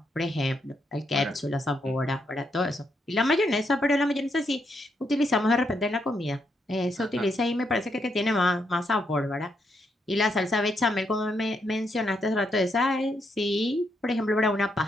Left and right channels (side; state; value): both; normal; correlation 0.78